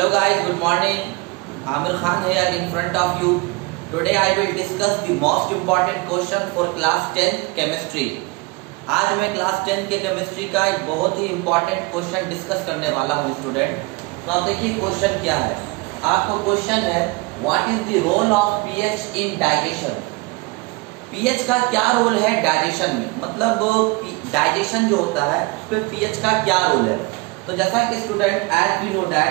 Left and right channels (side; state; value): left; quieter; 25.5 dB